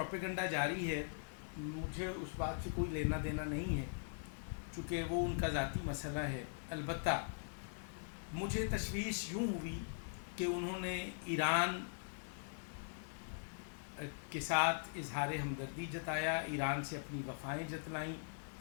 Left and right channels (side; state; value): right; silent; digital silence